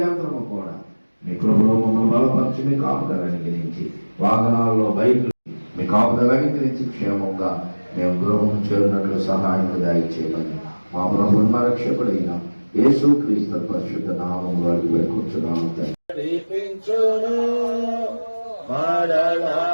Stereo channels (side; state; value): both; inverted; correlation -1.00